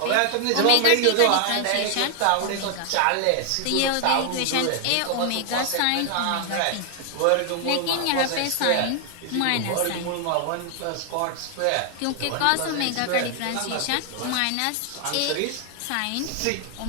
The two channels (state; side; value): different; both; correlation 0.00